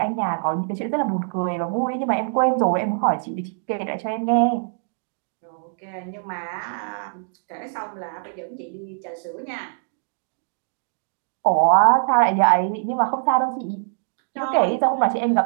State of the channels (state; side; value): silent; left; digital silence